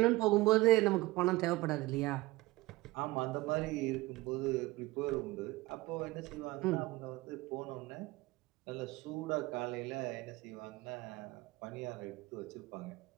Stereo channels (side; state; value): left; quieter; 20.5 dB